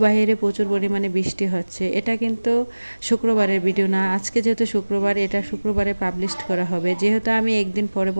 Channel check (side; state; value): both; inverted; correlation -1.00